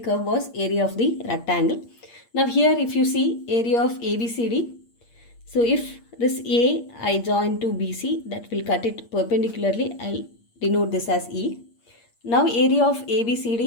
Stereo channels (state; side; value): late; right; 8.6 ms